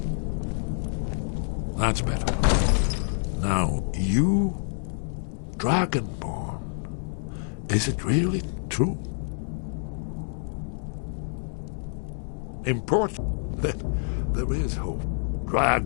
That's better. Now, you, Dragonborn, is it really true? Important. There is hope.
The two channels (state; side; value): silent; right; 60 dB below the other